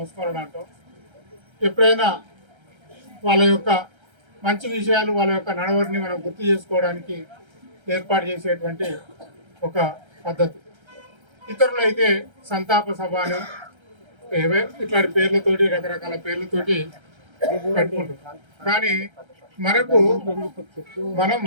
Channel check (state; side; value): late; left; 1.3 ms